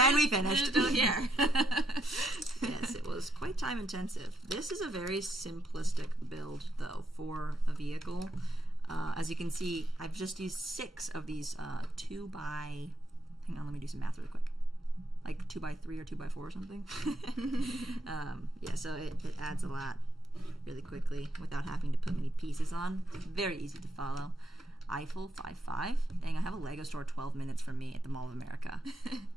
we finished. We're still here. Yes, it was quite time intensive. This is a very simplistic build, though, for a vehicle. As you can see, I've just used 6 of these 2x... Hang on, let me do some math really quick. Like 2x3 or 2x4 or something. Yeah, so it adds a lot really quickly without having to put many pieces on. Very easy to follow. Eiffel 5.5. Dang, I have a Lego store 12 minutes from me at the Mall of America.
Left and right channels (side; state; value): both; normal; correlation 0.77